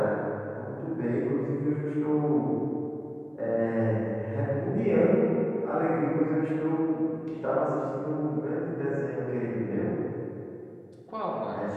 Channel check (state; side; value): identical; both; correlation 1.00